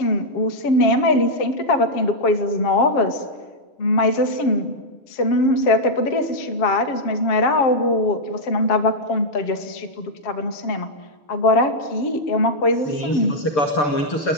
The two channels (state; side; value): late; right; 7.4 ms